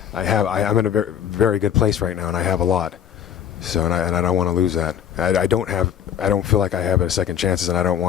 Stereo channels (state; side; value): quieter; right; 9.3 dB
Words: I'm in a very, very good place right now, and I have a lot. So, and I don't want to lose that. I don't feel like I have a second chances, and I don't